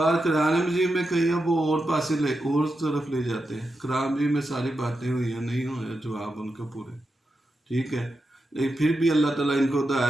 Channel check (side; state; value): both; normal; correlation 0.88